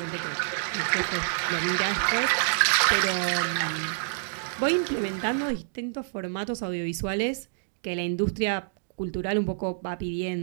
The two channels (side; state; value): left; silent; digital silence